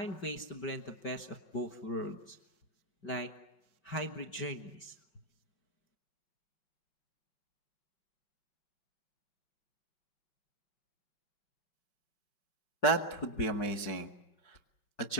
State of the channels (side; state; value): right; late; 5.3 ms